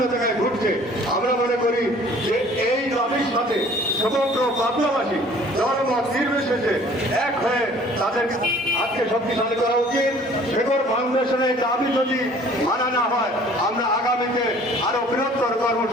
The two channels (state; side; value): normal; both; correlation 0.52